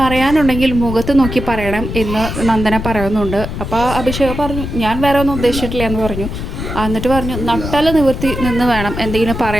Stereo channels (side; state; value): left; noise; rumble, 6 dB below the sound